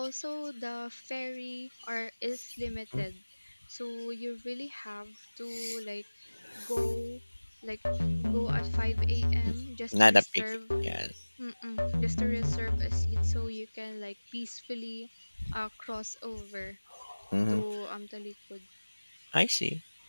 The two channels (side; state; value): both; inverted; correlation -1.00